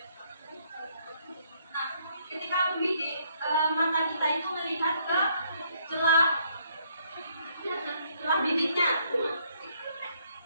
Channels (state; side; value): inverted; both; correlation -0.69